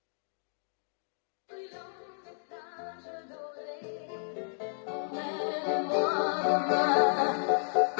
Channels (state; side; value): silent; right; digital silence